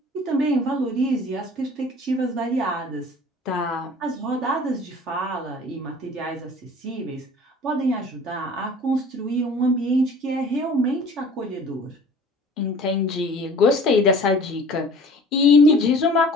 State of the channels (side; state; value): both; normal; correlation 0.47